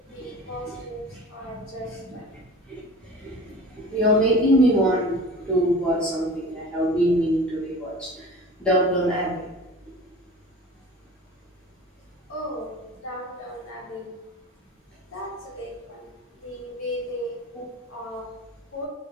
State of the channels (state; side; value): normal; both; correlation 0.39